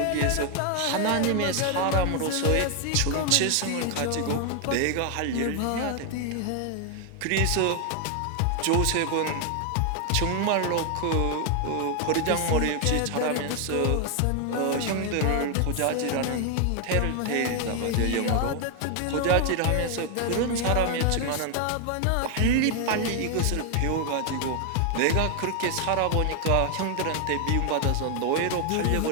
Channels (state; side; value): different; both; correlation 0.00